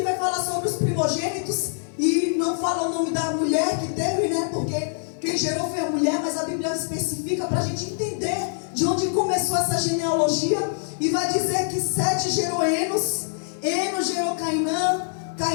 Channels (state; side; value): silent; right; digital silence